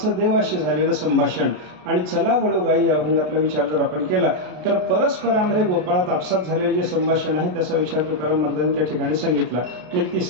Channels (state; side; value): late; left; 33 ms